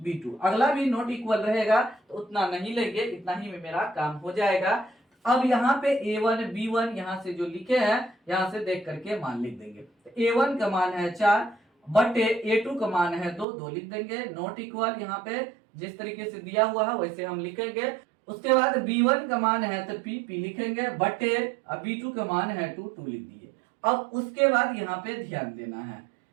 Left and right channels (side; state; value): left; drops out; at 13.5 s